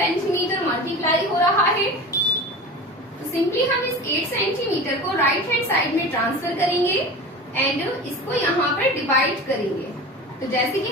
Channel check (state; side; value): normal; both; correlation 0.33